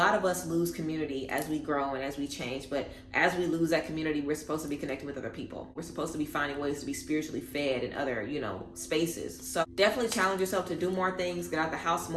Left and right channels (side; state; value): both; identical; correlation 1.00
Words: of us lose community as we grow and as we change, but as we lose that community, we're supposed to be connecting with other people. We're supposed to be finding ways to be spiritually fed in other, spaces. So definitely challenge yourself to do more things, get out the house